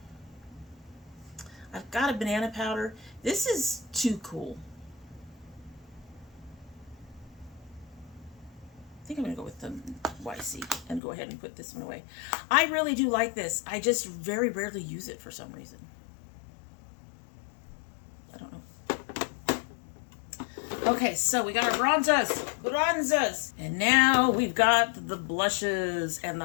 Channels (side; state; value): right; drops out; at 11.0 s